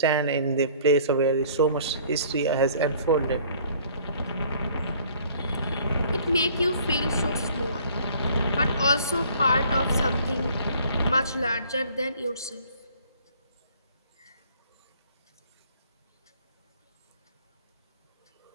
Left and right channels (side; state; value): both; inverted; correlation -0.55